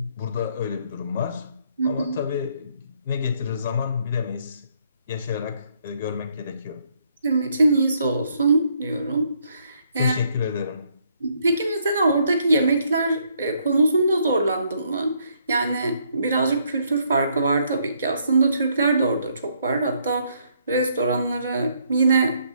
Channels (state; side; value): inverted; both; correlation -0.70